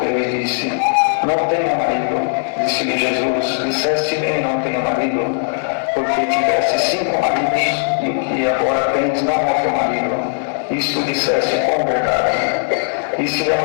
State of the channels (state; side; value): silent; right; digital silence